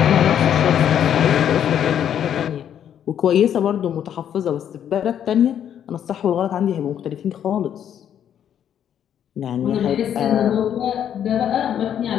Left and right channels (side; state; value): right; quieter; 9.5 dB